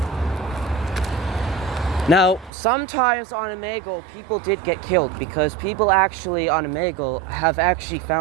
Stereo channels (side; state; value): left; drops out; at 2.5 s